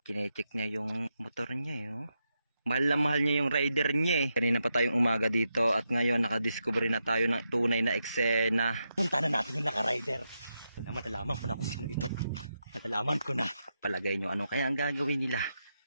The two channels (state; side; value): inverted; both; correlation -0.85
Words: Kine-check niya yung motor niya oh. Mahal na mahal niya yung rider niya eh. Kanina pa tayong umaga dito at ngayon nakadiscover na tayo ng tunay na eksena. Punta na natin yung naka-rider. Matalaman ko na kung sino ito. Matalaman ko na. Palagay nyo ano kaya ang gagawin nila.